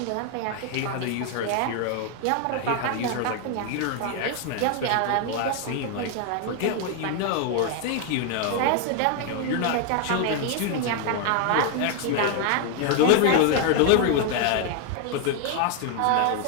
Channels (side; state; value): both; different; correlation 0.01